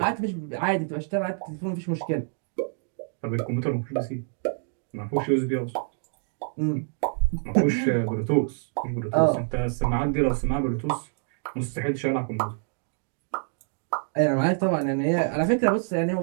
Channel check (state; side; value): silent; left; 60 dB below the other